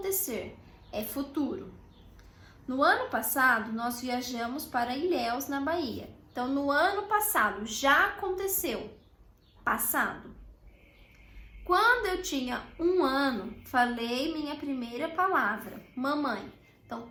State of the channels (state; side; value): identical; both; correlation 1.00